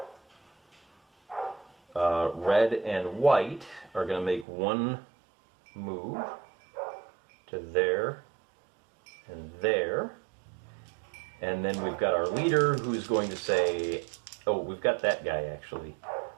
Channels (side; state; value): left; drops out; at 4.5 s